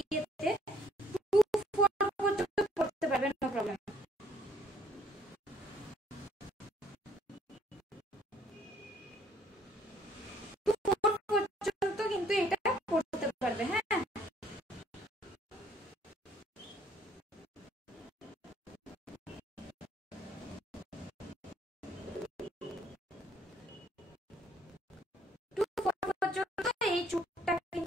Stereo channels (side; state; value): both; normal; correlation 0.63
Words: 2-4 পর্যন্ত পড়তে পারবে, নো প্রবলেম। পর্যন্ত কিন্তু এটা পড়তে পারবে। হ্যাঁ পর্যন্ত এই চুপটা